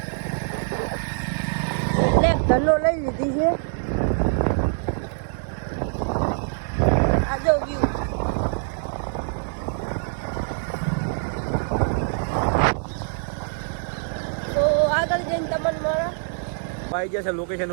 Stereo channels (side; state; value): left; silent; 62 dB below the other